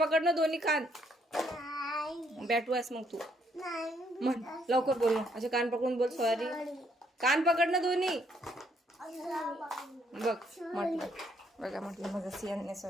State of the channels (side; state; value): both; normal; correlation 0.70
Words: ना दोन्ही कान. बॅटवास मग तू म्हण लवकर बोल ना. असे कान पकडून बोल सॉरी. कान पकड ना दोन्ही. बघ म्हटलं, बघा म्हटलं माझा सियान